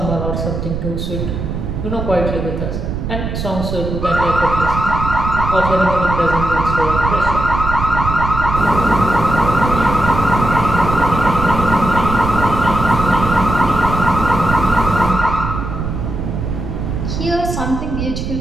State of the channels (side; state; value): right; noise; rumble, 4 dB below the sound